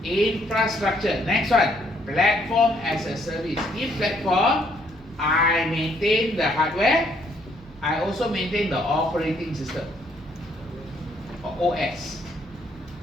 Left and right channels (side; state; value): left; noise; hum, 26 dB below the sound